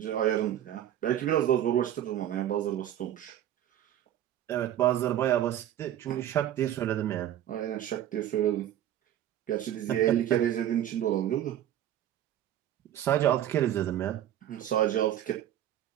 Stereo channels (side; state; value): left; quieter; 11.6 dB